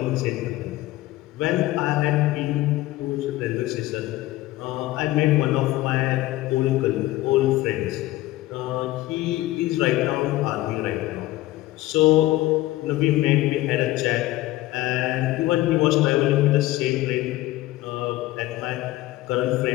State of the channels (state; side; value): quieter; right; 16.9 dB